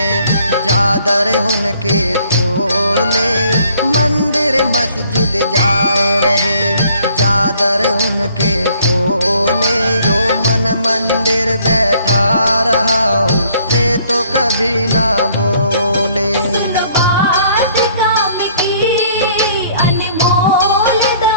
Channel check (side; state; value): both; inverted; correlation -0.61